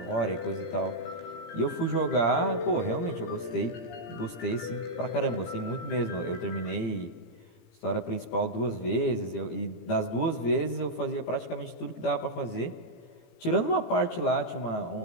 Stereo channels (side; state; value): right; late; 17 ms